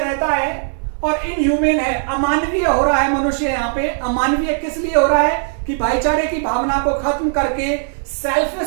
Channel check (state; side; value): silent; left; 64 dB below the other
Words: है और इनह्यूमन है, अमानवीय हो रहा है मनुष्य यहाँ पे। अमानवीय किस लिए हो रहा है? कि भाईचारे की भावना को खत्म करके